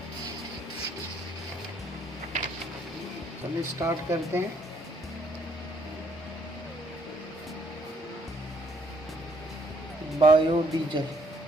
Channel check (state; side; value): normal; both; correlation 0.67